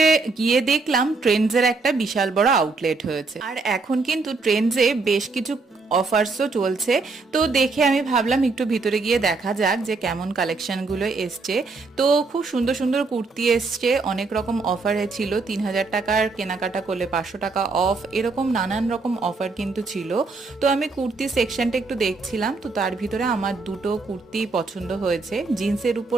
গিয়ে দেখলাম ট্রেন্ডসের একটা বিশাল বড় আউটলেট হয়েছে। আর এখন কিন্তু ট্রেন্ডসে বেশ কিছু অফার্সও চলছে। তো দেখে আমি ভাবলাম একটু ভিতরে গিয়ে দেখা যাক যে কেমন কালেকশনগুলো এসছে। তো খুব সুন্দর সুন্দর কুর্তি এসছে, অনেক রকম অফারে ছিল, 3000 টাকার কেনাকাটা করলে 500 টাকা অফ, এরকম নানান রকম অফার কিন্তু ছিল। তো আমি কুর্তি সেকশনটা একটু দেখছিলাম, তো তার ভিতরে আমার দুটো কুর্তি পছন্দ হয়েছে জিন্সের উপর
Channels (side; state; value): left; quieter; 3.9 dB